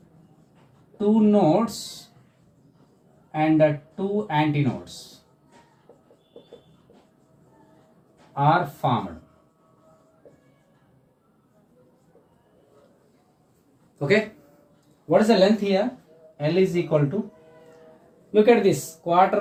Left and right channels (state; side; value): identical; both; correlation 1.00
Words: 2 nodes and 2 antinodes are formed. Okay, what is the length here? L is equal to, look at this,